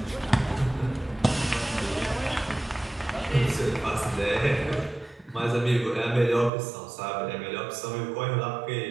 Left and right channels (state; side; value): drops out; left; at 6.5 s